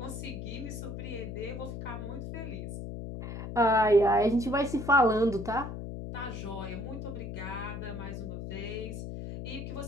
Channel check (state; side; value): noise; left; hum, 7 dB below the sound